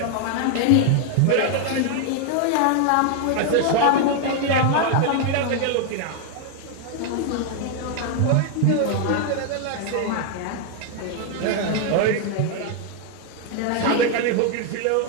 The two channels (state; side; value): different; both; correlation 0.00